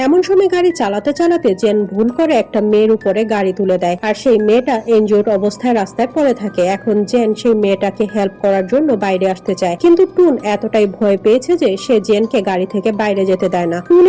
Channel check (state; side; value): identical; both; correlation 1.00